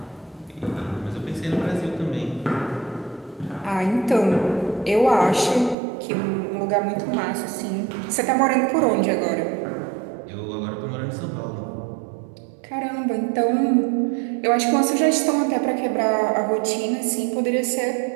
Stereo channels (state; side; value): drops out; left; at 5.8 s